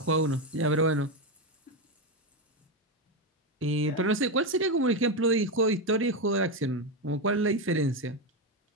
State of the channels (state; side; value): normal; both; correlation 0.10